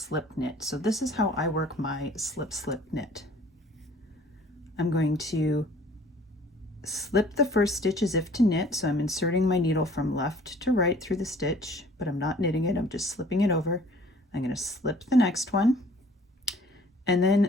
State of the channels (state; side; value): normal; both; correlation 0.53